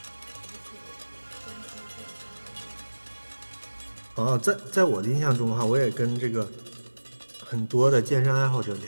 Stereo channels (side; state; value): both; inverted; correlation -1.00